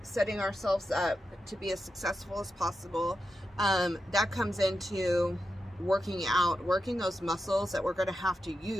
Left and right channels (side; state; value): both; normal; correlation 0.88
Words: setting ourselves up to be as successful as possible. That comes into working those muscles that we're going to have to